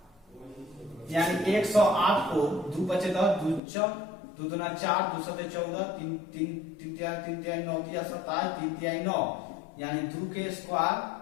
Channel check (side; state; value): right; drops out; at 3.6 s